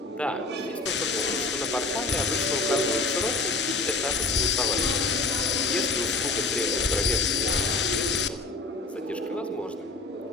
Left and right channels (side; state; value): right; quieter; 3.5 dB